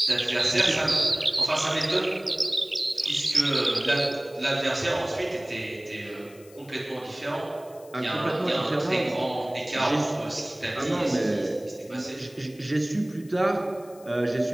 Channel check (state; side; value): noise; left; hiss, 25 dB below the sound